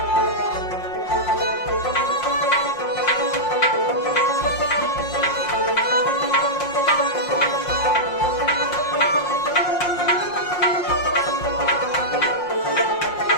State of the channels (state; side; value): late; right; 5.6 ms